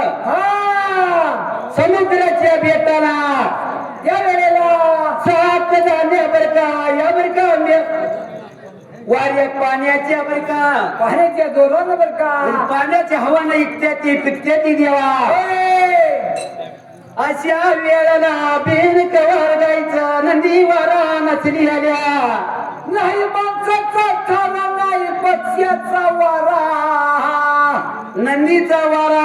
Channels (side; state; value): both; identical; correlation 1.00